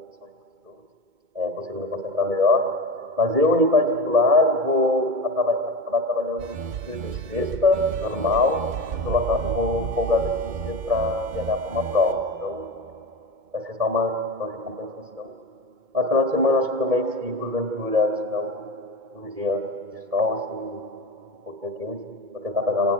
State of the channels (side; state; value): left; late; 2.2 ms